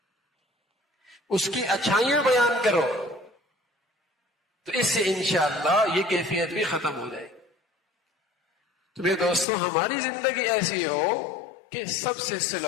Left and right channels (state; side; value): drops out; right; at 9.5 s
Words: اس کی اچھائیاں بیان کرو، تو اس سے انشاءاللہ یہ کیفیت بھی ختم ہو جائے. تو میرے دوستوں ہماری زندگی ایسی ہو کہ سب سے